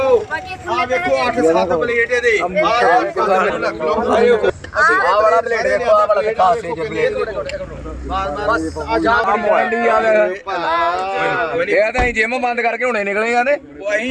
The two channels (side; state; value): both; identical; correlation 1.00